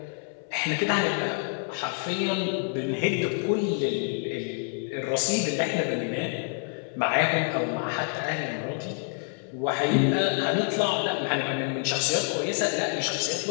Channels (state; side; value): silent; right; 57 dB below the other